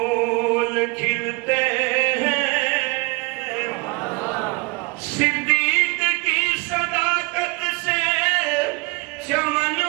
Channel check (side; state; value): left; quieter; 27.9 dB